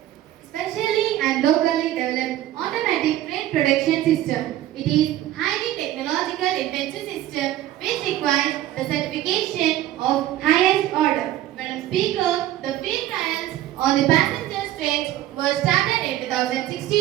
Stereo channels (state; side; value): quieter; left; 13.7 dB